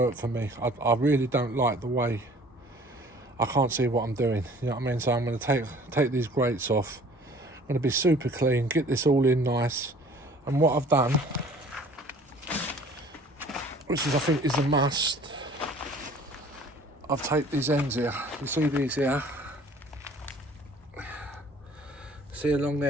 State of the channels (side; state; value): both; normal; correlation 0.51